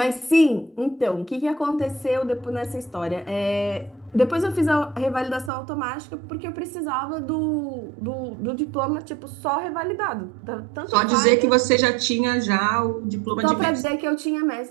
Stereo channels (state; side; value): drops out; left; at 5.5 s